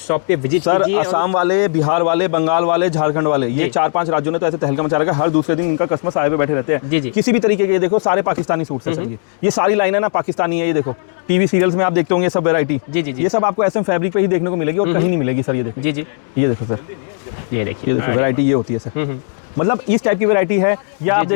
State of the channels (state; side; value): silent; right; 68 dB below the other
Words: पे विजिट सर, असम वाले, बिहार वाले, बंगाल वाले, झारखंड वाले, ये 4-5 राज्यों ने तो ऐसे तहलका मचा रखा है, हर दूसरे दिन इनका कस्टमर साए पे बैठे रहते हैं। जी। किसी भी तरीके के, ये देखो सारे पाकिस्तानी सूट हैं, ये सारी लाइन है ना पाकिस्तानी है। ये देखो टीवी सीरियल्स में आप देखते होंगे सब वैरायटी। जी, ये सब आपको SM फैब्रिक पे ही देखने को मिलेगी और कहीं नहीं मिलेगी सर। ये देखो जी, ये देखो सर, ये देखिए वैरायटी ये होती है सर, मतलब इस टाइप की वैरायटी है। या आप